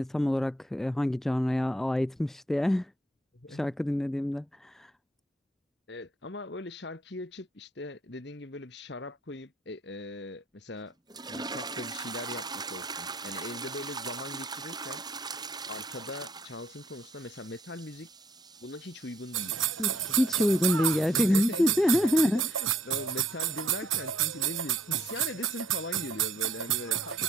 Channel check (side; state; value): both; normal; correlation 0.67